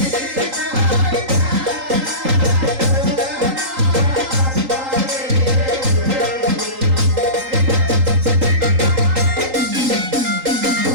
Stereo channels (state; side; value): late; left; 3.8 ms